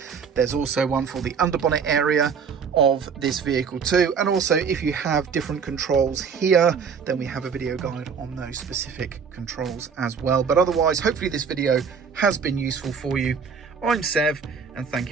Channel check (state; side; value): quieter; left; 6.2 dB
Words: There's also one for the underbonnet area of this vehicle too, and also if you have different controls here, then we have a video guide on those specific controls as well. But otherwise, hopefully this video has been useful for you. I'm Sev, and thank